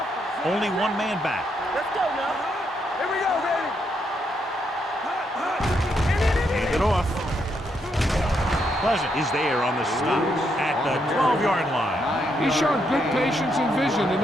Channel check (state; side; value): normal; both; correlation 0.78